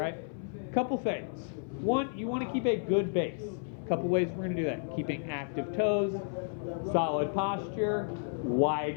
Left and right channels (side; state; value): right; silent; 56 dB below the other